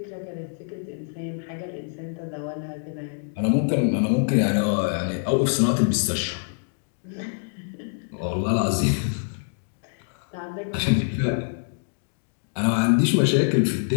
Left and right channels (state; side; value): silent; right; digital silence